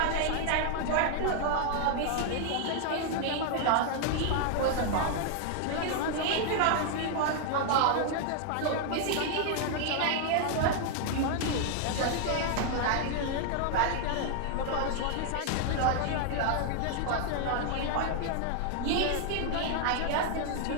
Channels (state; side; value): different; both; correlation 0.00